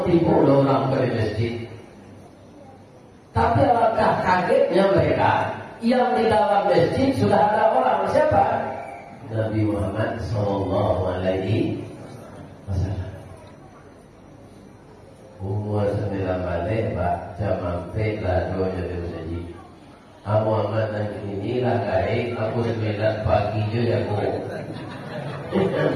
timbul orang ke masjid. Tapi alangkah kagetnya mereka. Yang di dalam masjid sudah ada orang siapa? Nabi Muhammad Sallallahu Alaihi Wasallam. Umur 9 balik Pak, jam sampai ladonya dia saji. Muhammad dan inilah gaib, aku 9 pagi je aku.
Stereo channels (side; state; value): both; identical; correlation 1.00